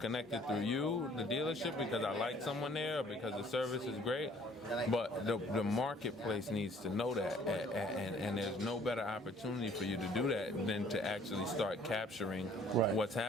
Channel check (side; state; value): both; normal; correlation 0.57